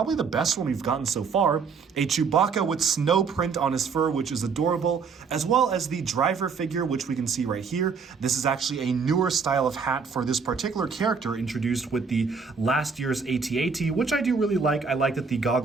the best one we've gotten so far. A Chewbacca with snow print on his fur, which is adorable, as well as the driver figure, which we can see right here. This is actually a newer style of hat for this particular character, introduced with the last year's AT-AT, which I do really like. I like that the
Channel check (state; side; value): quieter; left; 5.5 dB